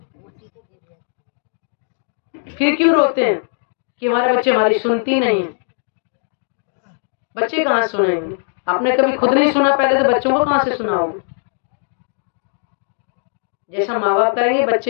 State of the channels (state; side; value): silent; right; digital silence